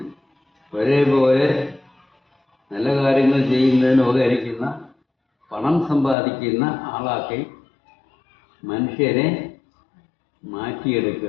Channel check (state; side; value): drops out; right; at 6.2 s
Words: ഒരേപോലെ നല്ല കാര്യങ്ങൾ ചെയ്യുന്നതിന് ഉപകരിക്കുന്ന പണം സമ്പാദിക്കുന്ന ആളാക്കി മനുഷ്യരെ